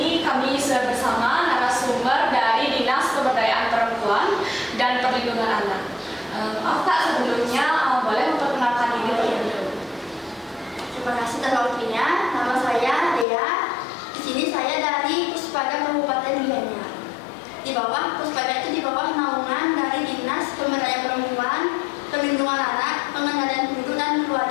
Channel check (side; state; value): right; drops out; at 13.2 s